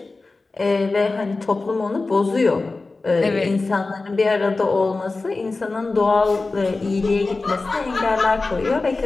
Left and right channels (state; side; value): quieter; right; 3.6 dB